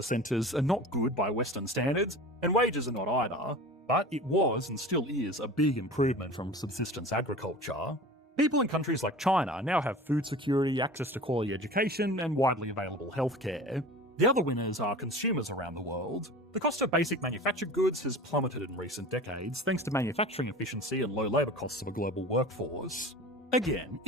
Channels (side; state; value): both; normal; correlation 0.37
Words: centres are not good by Western standards, and wages are not either, but it was and still is a big improvement from subsistence agriculture. People in countries like China now have food security, access to quality education and widely available healthcare. The other winners are consumers around the world. The cost of basic manufactured goods has plummeted in recent decades thanks to manufacturing efficiency and low labour costs of a global workforce. Again,